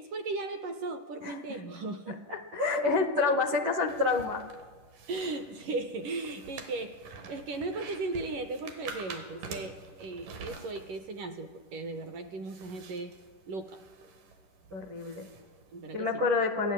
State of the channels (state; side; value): late; left; 11 ms